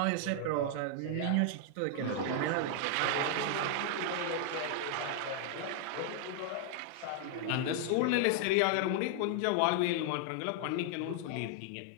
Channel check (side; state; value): both; different; correlation 0.00